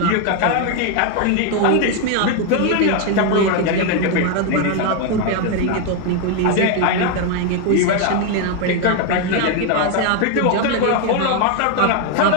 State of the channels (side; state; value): both; different; correlation 0.01